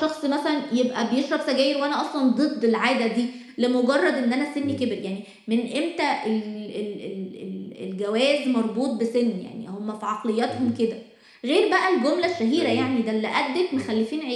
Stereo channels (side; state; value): both; identical; correlation 1.00